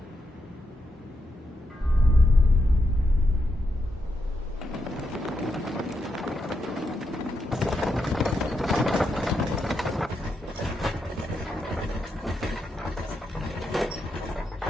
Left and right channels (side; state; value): both; normal; correlation 0.83